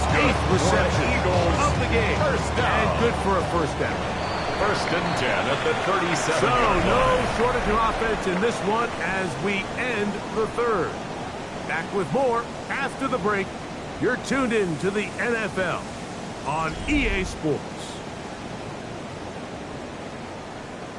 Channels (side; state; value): both; identical; correlation 1.00